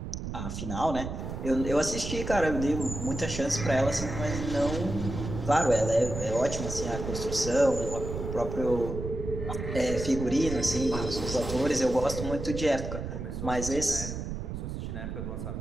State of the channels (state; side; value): noise; right; rumble, 6 dB below the sound